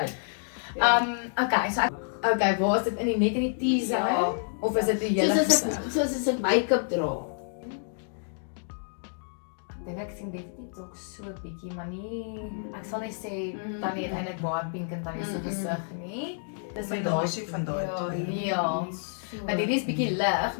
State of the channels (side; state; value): right; silent; digital silence